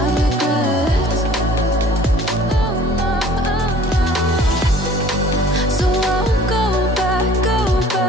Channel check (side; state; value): both; normal; correlation 0.51